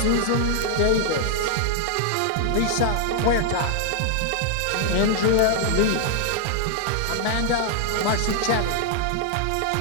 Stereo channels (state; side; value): different; both; correlation 0.00